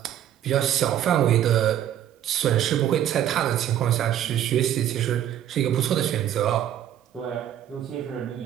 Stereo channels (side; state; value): left; quieter; 11.0 dB